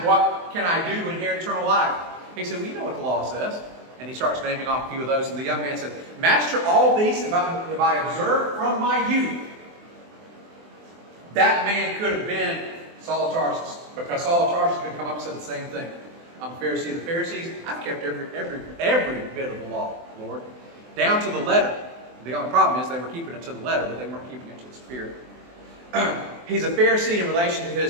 what can I do to inherit eternal life? He said, well, you know what the law says. And he starts naming off a few of those. And the young man said, Master, all these have I observed from my youth. That man could have been Saul of Tarsus, because Saul of Tarsus could come up and say the same thing. I'm a Pharisee of the Pharisees. I've kept every bit of the law, Lord, down to the letter. The only problem is they were keeping it to the letter, but they weren't keeping it to the spirit. He's a Pharisee in relation to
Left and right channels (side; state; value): left; late; 24 ms